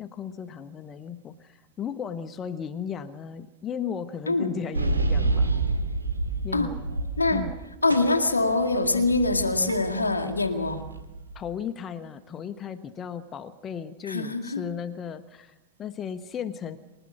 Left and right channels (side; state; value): both; inverted; correlation -0.60